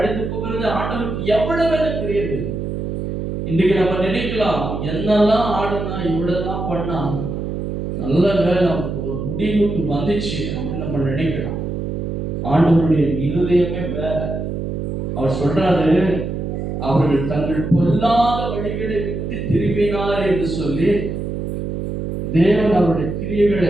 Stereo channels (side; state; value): right; noise; hum, 3 dB below the sound